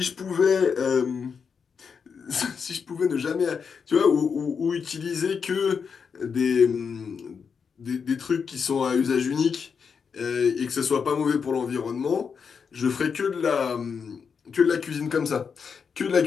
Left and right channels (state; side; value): quieter; right; 6.1 dB